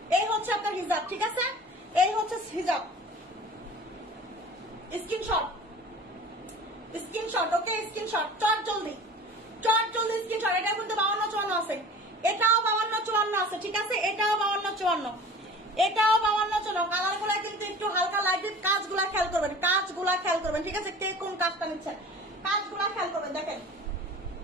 এই হচ্ছে আপনার হিজাব, ঠিক আছে, এই হচ্ছে হিজাব, স্ক্রিনশট, স্ক্রিনশট, ওকে স্ক্রিনশট, চট জলদি স্ক্রিনশট। এটা কিন্তু 52, 54 আছে, এটাও 52, 54 আছে, ঠিক আছে, এটাও 52, 54, এটাও 52, 54, কালার গুলা কিন্তু একটু হালকা লাইট, কাজগুলা খেয়াল করবেন, কাজগুলা খেয়াল করবেন, ঠিক আছে, কে কোন কাজটা নিচ্ছেন কাজগুলা খেয়াল করবেন। দেখেন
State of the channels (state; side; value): normal; both; correlation 0.41